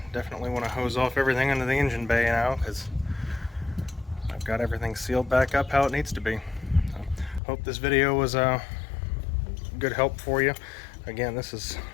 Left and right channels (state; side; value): drops out; right; at 7.4 s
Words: Definitely want to hose off everything into the engine bay now because I've got everything sealed back up how it needs to be. So, hope this video was a good help for you. Again, this is